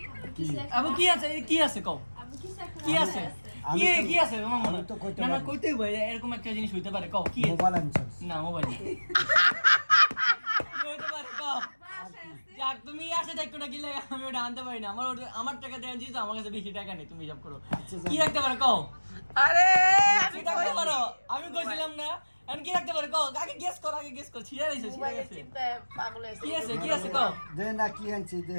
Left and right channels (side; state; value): both; inverted; correlation -1.00